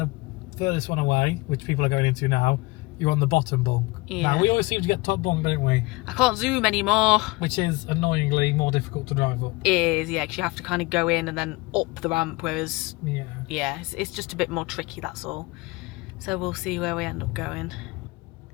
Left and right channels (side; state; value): right; quieter; 23.2 dB